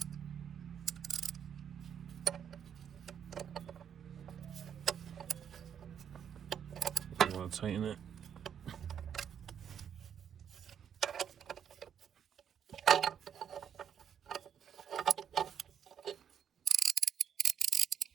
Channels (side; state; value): left; quieter; 8.5 dB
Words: I'm gonna tighten it.